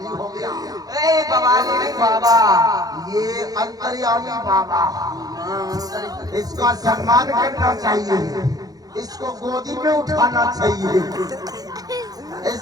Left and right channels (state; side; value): late; left; 0.18 ms